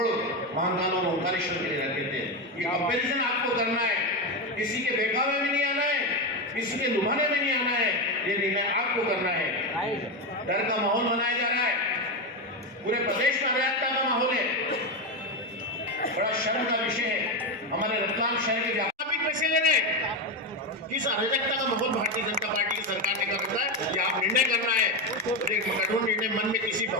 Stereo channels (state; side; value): normal; both; correlation 0.12